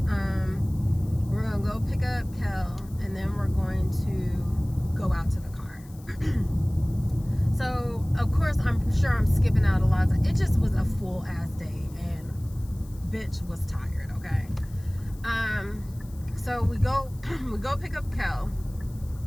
We're going to go pick up Kel, and then we're going to go out to the car. So, of course, I'm sure I'm skipping out a lot. It just was a full ass day, and bitch was tired, okay? So we go pick up Kel.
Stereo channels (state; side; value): noise; left; hiss, 25 dB below the sound